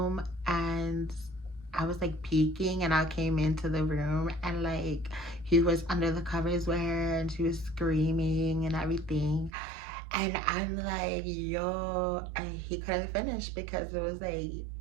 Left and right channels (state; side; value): drops out; left; at 9.5 s